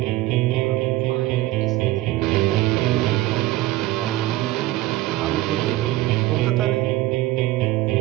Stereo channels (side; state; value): left; quieter; 16.9 dB